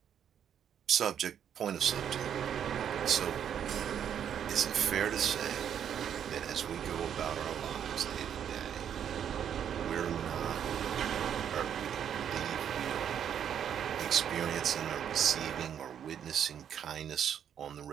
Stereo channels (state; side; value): quieter; left; 8.9 dB